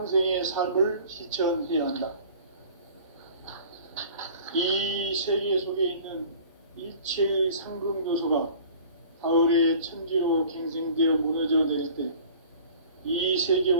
삶을 실천해야 한다. 이 세계 속에 있는 일체의 상극 요소가 가을의 천지로 갱생되어 무너져 내릴 때 이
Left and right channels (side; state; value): both; inverted; correlation -0.46